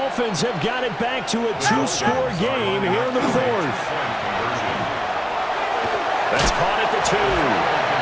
have got it back to a 2-score game here in the 4th. That's caught at the 2.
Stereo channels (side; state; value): both; identical; correlation 1.00